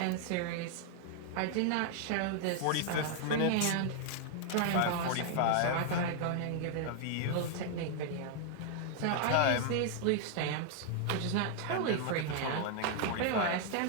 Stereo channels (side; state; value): both; different; correlation 0.00